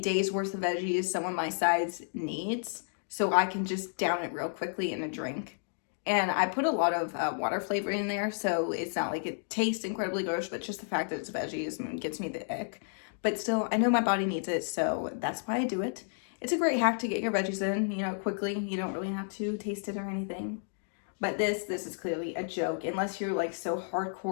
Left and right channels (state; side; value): silent; right; digital silence